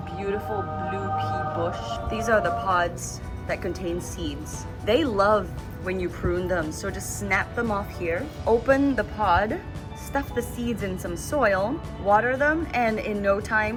beautiful blue pea bush. These are the pods that contain seeds. They love when you prune them, so just snap them off here, open the pod, stuff the seeds in some soil, water them, and in no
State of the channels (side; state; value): both; identical; correlation 1.00